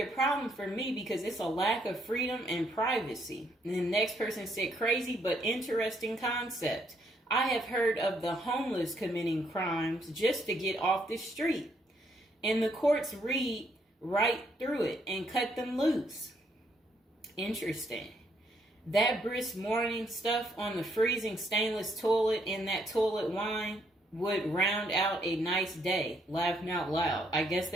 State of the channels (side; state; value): both; normal; correlation 0.72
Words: problem for me because it's a lack of freedom and privacy. And the next person said, crazy but interesting concept. I have heard of the homeless committing crimes just to get off the street. And the courts read right through it and cut them loose. Interesting. That brisk morning stuff on the freezing stainless toilet and that toilet wine would round out a nice day. Laughing out loud. I guess